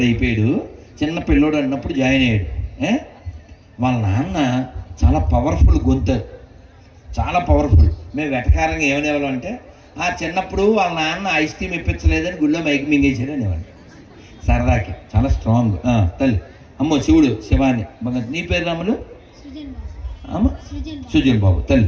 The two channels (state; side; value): identical; both; correlation 1.00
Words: అయిపోయాడు, చిన్న పిల్లోడు అన్నప్పుడు జాయిన్ అయ్యాడు. వాళ్ళ నాన్న చాలా పవర్ఫుల్ గొంతు, చాలా పవర్ఫుల్. మేము వెటకారంగా ఏమనేవాళ్ళం అంటే, చిన్నప్పుడు వాళ్ళ నాన్న ఐస్ క్రీమ్ ఇప్పించలేదని గుళ్ళో మైక్ మింగేసాడు అనేవాడు సరదాకి. చాలా స్ట్రాంగ్. తల్లి అమ్మో శివుడు, శివాని. నీ పేరు రాములు? అమ్మ సుజన్ బాబు. తల్లి